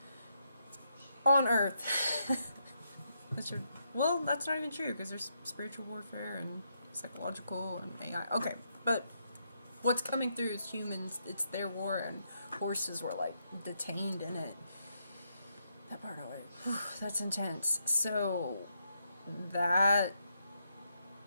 On Earth. Well, that's not even true, because there's spiritual warfare and psychological and AI. Okay, but... What's coming through is humans, it's their war, and horses were, like, detained in it. That part, that's intense. So, that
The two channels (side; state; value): both; inverted; correlation -0.80